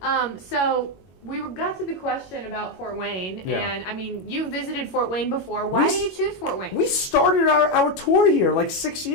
So we got to the question about Fort Wayne, and I mean, you visited Fort Wayne before. Why do you choose Fort Wayne? We started our tour here like 6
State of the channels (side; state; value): right; late; 22 ms